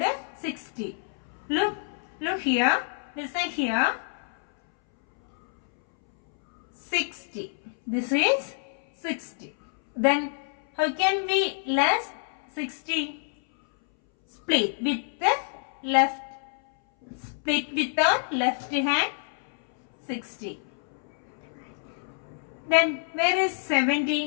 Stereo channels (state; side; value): silent; right; 60 dB below the other